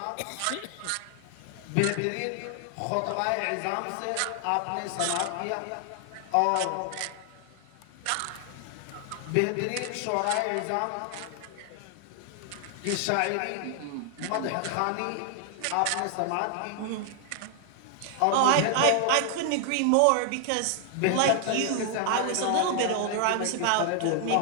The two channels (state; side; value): different; both; correlation 0.00